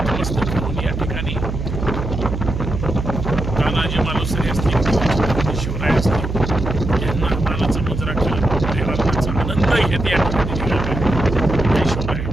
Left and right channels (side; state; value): right; noise; hum, 5 dB below the sound